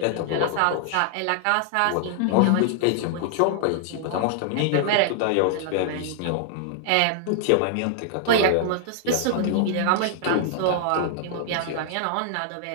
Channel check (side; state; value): both; different; correlation -0.01